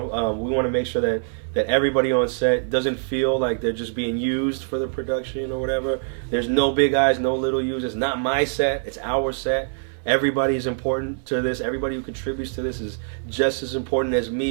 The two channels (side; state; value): left; silent; 63 dB below the other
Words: to make sure that everybody on set doesn't feel like they're just being used for the production or whatever. There's no big eyes, no little U's. It's not my set, it's our set. Everybody is important to this. Everybody who contributes to this is just as important as